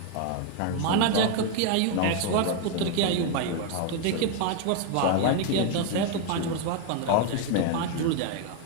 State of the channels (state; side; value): different; both; correlation 0.01